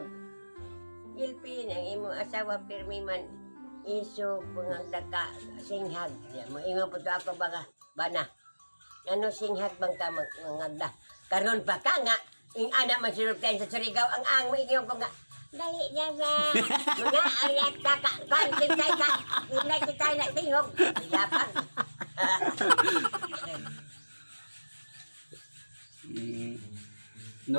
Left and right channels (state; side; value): inverted; both; correlation -1.00